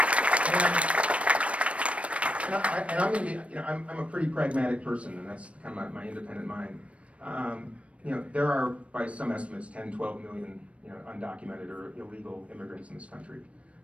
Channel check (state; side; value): late; left; 0.063 ms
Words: And I'm going to be, you know, I'm a pretty pragmatic person, and that's kind of my independent mind. You know, there are, by some estimates, 10, 12 million, you know, undocumented or illegal immigrants in this country.